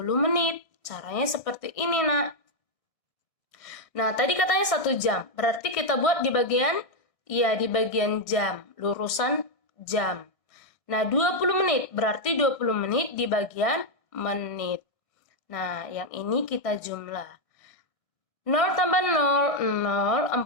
menit. Caranya seperti ini, nak. Nah, tadi katanya 1 jam. Berarti kita buat di bagian jam, lurusan jam. Nah, 20 menit, berarti 20 menit di bagian menit. Nah, yang ini kita jumlah. 0 tambah 0, 0,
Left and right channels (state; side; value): late; right; 1.6 ms